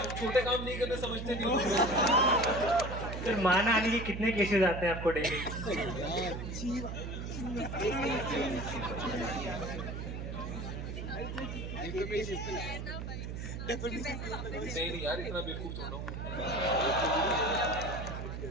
छोटे काम नहीं करने, समझते नहीं हो। सर मान आने के कितने केसेस आते हैं आपको डेली? नहीं यार, इतना बेवकूफ थोड़ा हूँ।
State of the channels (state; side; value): noise; right; hum, 6 dB below the sound